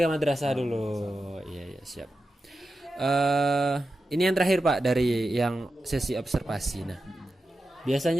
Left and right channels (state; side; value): normal; both; correlation 0.91